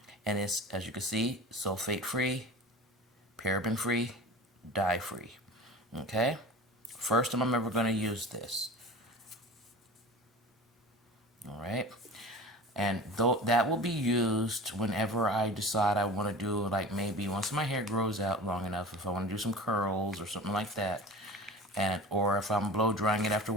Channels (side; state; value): both; normal; correlation 0.36